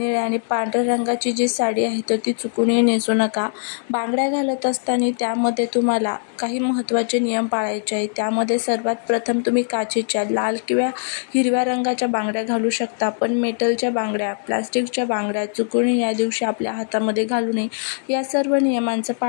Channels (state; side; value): silent; right; 63 dB below the other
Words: आणि पांढऱ्या रंगाची जी साडी आहे तर ती चुकूनही नेसू नका. बांगड्या घालत असताना त्यामध्ये तुम्हाला काही महत्त्वाचे नियम पाळायचे आहेत. त्यामध्ये सर्वात प्रथम तुम्ही काचेच्या लाल किंवा हिरव्या रंगाच्या बांगड्या घालू शकता, पण मेटलच्या बांगड्या, प्लास्टिकच्या बांगड्या चुकूनही या दिवशी आपल्या हातामध्ये घालू नये. या सर्व नियमांचं